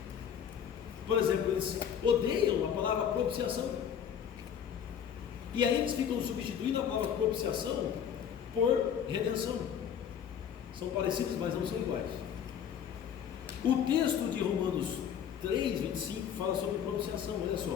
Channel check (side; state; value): right; quieter; 8.5 dB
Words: Por exemplo, eles odeiam a palavra propiciação. E aí eles ficam substituindo a palavra propiciação por redenção. São parecidos, mas não são iguais. O texto de Romanos 3, 25 fala sobre propiciação. Olha